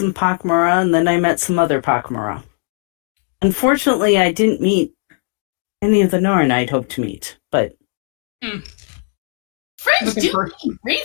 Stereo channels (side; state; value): right; silent; 56 dB below the other